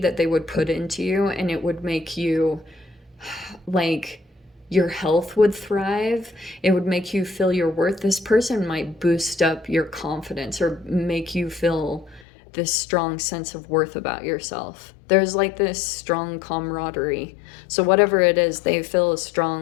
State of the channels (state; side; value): drops out; right; at 12.2 s